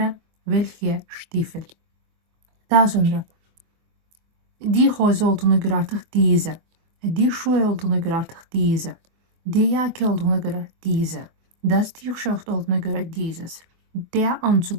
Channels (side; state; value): left; late; 24 ms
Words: welche Stiefel? Daha sonra die Hose olduğuna göre artık diese. Die Schuhe olduğuna göre artık diese. Die Jacke olduğuna göre diese. Das T-shirt olduğuna göre dieses. Der